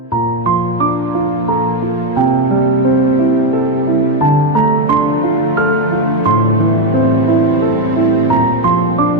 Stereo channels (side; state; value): both; normal; correlation 0.07